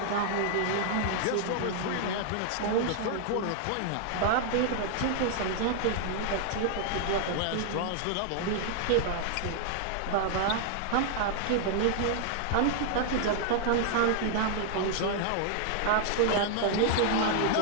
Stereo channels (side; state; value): both; different; correlation 0.00